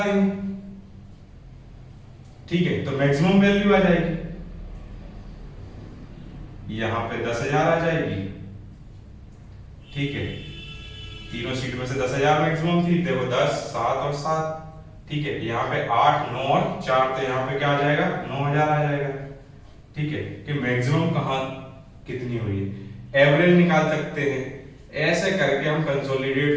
देंगे। ठीक है, तो मैक्सिमम वैल्यू आ जाएगी। यहाँ पे 10,000 आ जाएगी। ठीक है, तीनों सीट में से 10,000 मैक्सिमम थी, देखो 10, 7 और 7। ठीक है, यहाँ पे 8, 9 और 4, तो यहाँ पे क्या आ जाएगा, 9,000 आ जाएगा। ठीक है, कि मैक्सिमम कहाँ कितनी हुई है, एवरेज निकाल सकते हैं। ऐसे करके हम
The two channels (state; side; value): identical; both; correlation 1.00